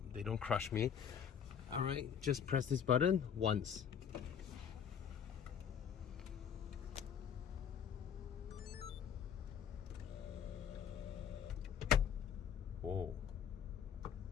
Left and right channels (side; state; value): right; quieter; 8.0 dB